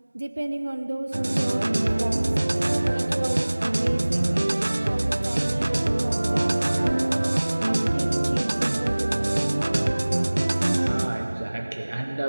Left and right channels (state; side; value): inverted; both; correlation -1.00